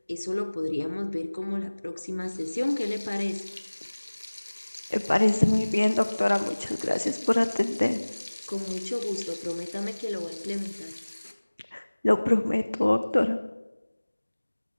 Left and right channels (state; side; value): inverted; both; correlation -1.00